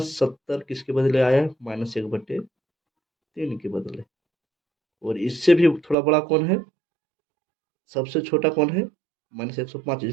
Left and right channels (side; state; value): left; drops out; at 6.0 s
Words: किसके बदले आया है? -1/3 के बदले। और इससे भी थोड़ा बड़ा कौन है? सबसे छोटा कौन है? -105